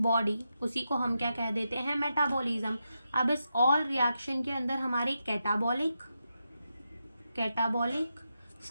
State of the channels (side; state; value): both; inverted; correlation -0.87